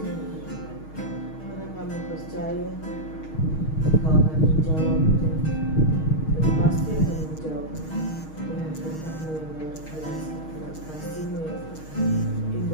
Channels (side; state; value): right; late; 6.4 ms